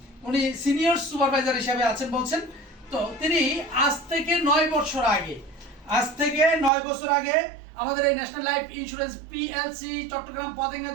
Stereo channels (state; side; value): drops out; left; at 6.7 s